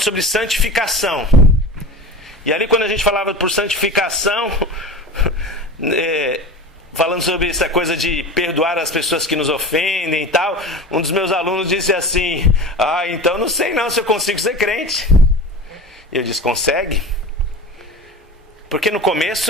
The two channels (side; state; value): both; normal; correlation 0.32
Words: sobre santificação. E ali quando a gente falava por santificação, falando sobre essa coisa de perdoar as pessoas que nos ofendem e tal, um dos meus alunos disse assim, então não sei não se eu consigo ser crente. E eu disse, consegue? Porque no